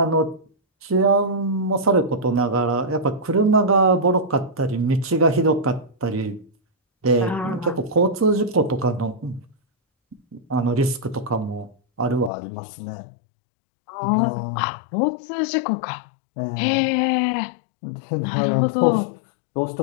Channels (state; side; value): drops out; right; at 12.3 s